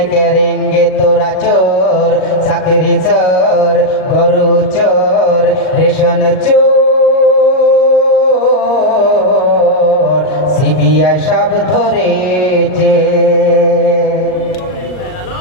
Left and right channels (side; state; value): right; late; 38 ms